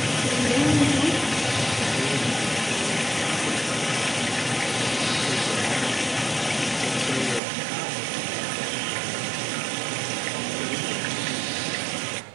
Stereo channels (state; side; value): drops out; left; at 7.4 s